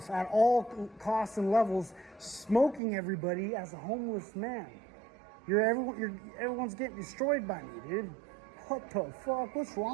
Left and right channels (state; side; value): drops out; left; at 2.8 s